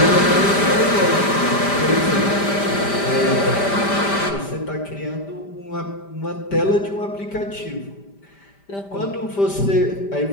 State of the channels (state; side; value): late; right; 5.0 ms